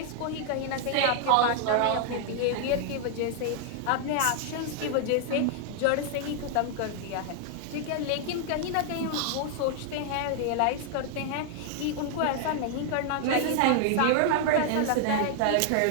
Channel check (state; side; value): different; both; correlation 0.00